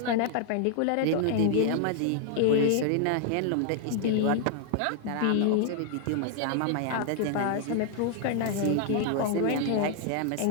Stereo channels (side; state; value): both; different; correlation 0.00